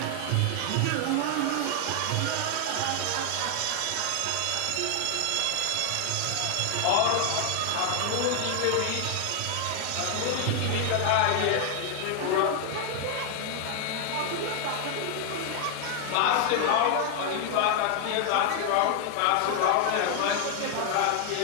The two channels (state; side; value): different; both; correlation 0.00